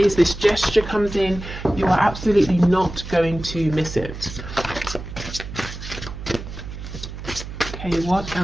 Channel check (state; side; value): noise; right; hum, 10 dB below the sound